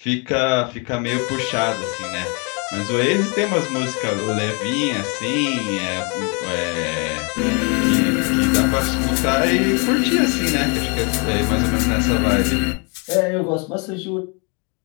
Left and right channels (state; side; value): quieter; right; 34.0 dB